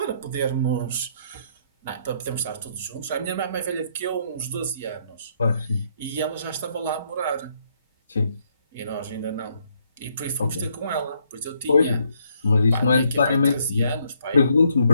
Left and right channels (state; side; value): inverted; both; correlation -0.72